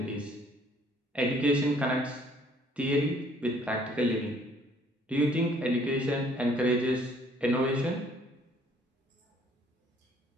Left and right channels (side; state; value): both; normal; correlation 0.61